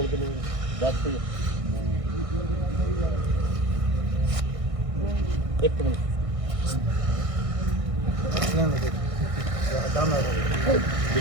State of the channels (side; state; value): left; late; 1.6 ms